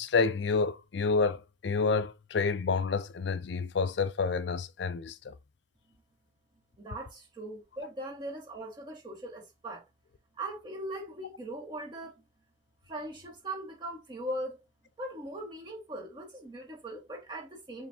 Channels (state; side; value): quieter; right; 3.5 dB